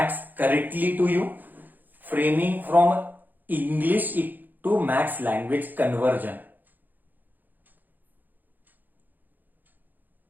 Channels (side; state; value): left; late; 0.086 ms